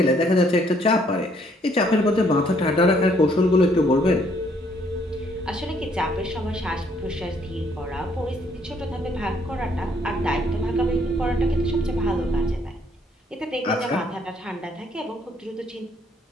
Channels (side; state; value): both; normal; correlation 0.66